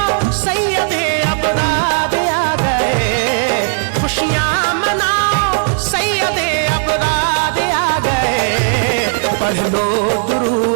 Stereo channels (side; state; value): left; silent; digital silence